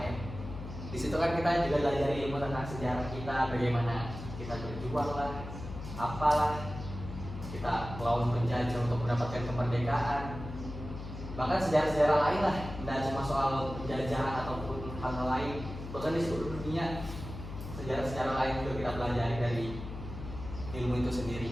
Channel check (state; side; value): noise; left; hum, 9 dB below the sound